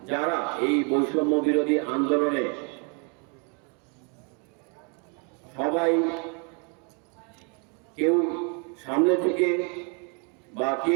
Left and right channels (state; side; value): quieter; left; 35.5 dB